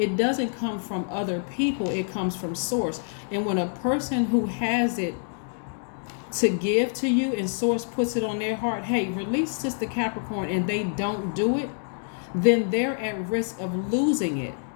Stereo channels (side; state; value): right; silent; 61 dB below the other